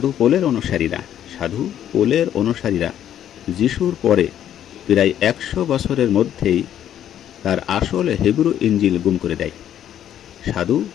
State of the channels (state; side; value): quieter; right; 10.6 dB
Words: পোলের অনুসারীরা যিশুর পরে প্রায় 100 বছরের মধ্যেই তার আসল হিব্রু ইঞ্জিল গুম করে দেয়। সাধু